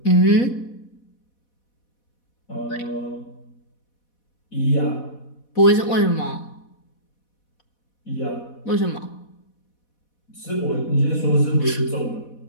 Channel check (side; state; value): right; late; 4.1 ms